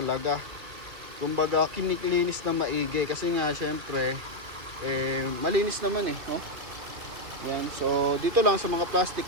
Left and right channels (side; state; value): left; late; 2.4 ms